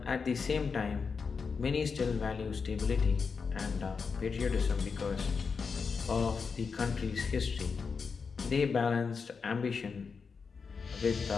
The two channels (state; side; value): quieter; right; 5.4 dB